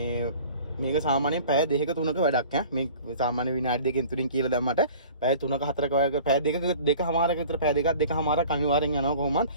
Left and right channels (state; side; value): inverted; both; correlation -0.45